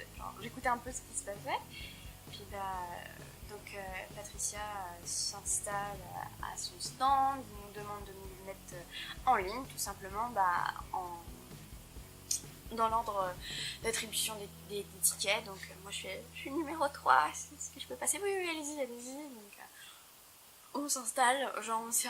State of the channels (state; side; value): identical; both; correlation 1.00